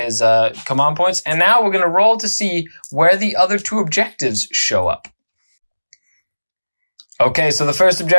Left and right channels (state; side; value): inverted; both; correlation -1.00